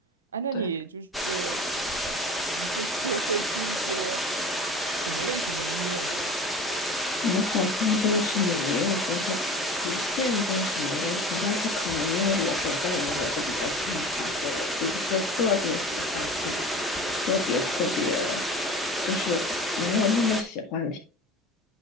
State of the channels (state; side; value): normal; both; correlation 0.38